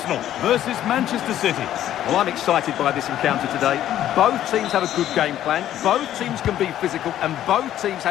versus Manchester City. Well, I'm excited by this encounter today. Both teams have a good game plan, both teams can be physical, and both teams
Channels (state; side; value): quieter; right; 12.0 dB